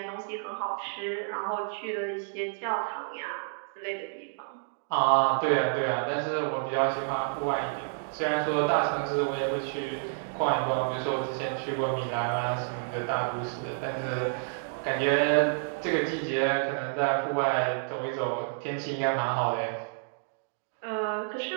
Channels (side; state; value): left; silent; digital silence